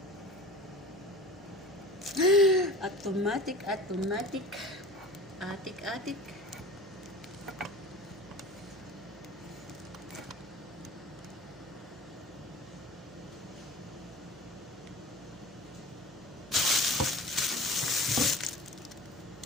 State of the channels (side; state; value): right; noise; hum, 21 dB below the sound